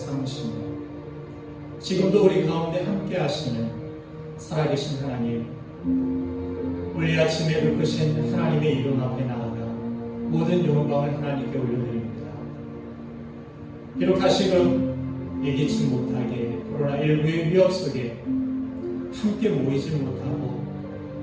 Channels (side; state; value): both; identical; correlation 1.00